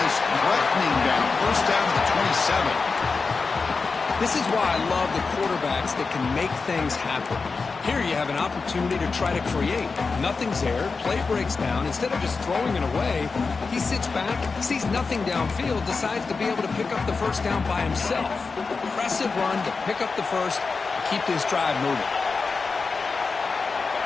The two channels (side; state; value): right; quieter; 4.5 dB